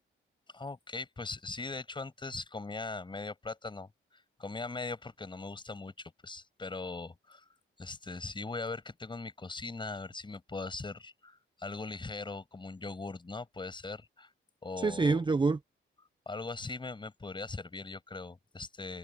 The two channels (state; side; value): normal; both; correlation 0.65